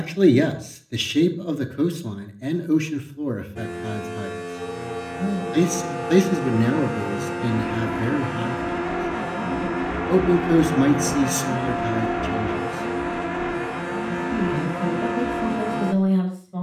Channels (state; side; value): identical; both; correlation 1.00